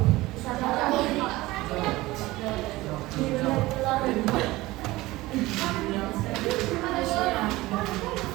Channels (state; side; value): quieter; left; 19.2 dB